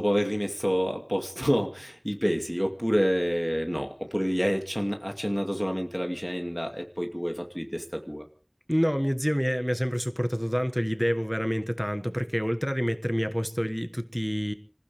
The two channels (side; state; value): both; identical; correlation 1.00